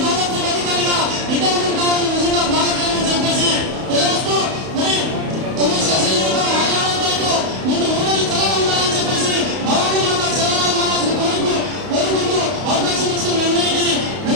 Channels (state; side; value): late; left; 31 ms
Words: డెవలప్మెంట్ అధికారిగా రిటైర్మెంట్ కావాలని నిజంగా బాధకరమని చెప్పేసి తెలియజేస్తూ మరి 9 శాసన జీవితం ఆయుధాలతో ముందు ఊరిని చల్లగా ఉండాలని చెప్పేసి భవానీ మాత చల్లగా కోరుకుంటూ అవకాశం ఇచ్చిన అందరికీ